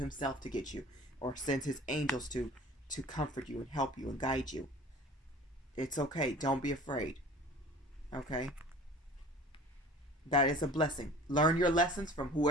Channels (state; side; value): normal; both; correlation 0.44